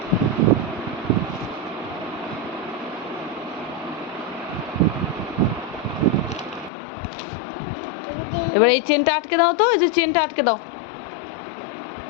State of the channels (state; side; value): drops out; right; at 6.7 s